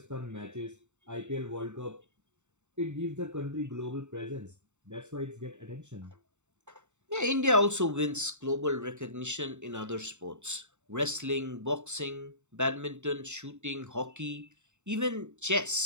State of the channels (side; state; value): left; late; 0.84 ms